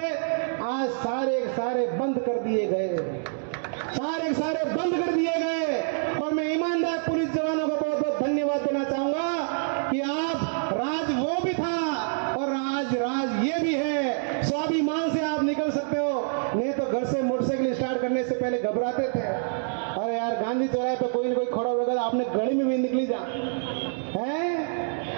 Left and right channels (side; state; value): left; silent; digital silence